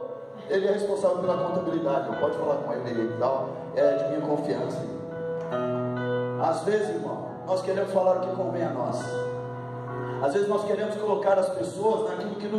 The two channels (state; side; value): identical; both; correlation 1.00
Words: Ele é responsável pela contabilidade. Eu pode falar com ele e tal. É de minha confiança. Às vezes, irmão, nós queremos falar o que convém a nós. Às vezes nós queremos colocar as pessoas naquilo que